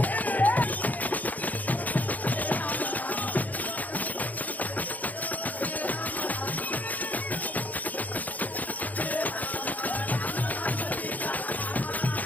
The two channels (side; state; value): right; late; 0.079 ms